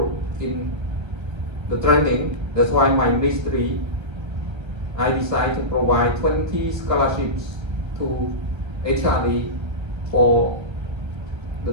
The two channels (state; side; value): late; left; 1.3 ms